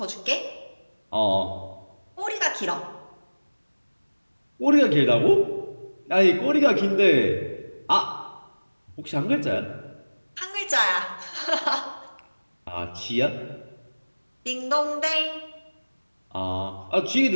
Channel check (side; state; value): both; inverted; correlation -1.00